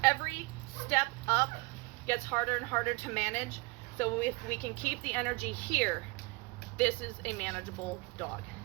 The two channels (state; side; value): quieter; left; 26.5 dB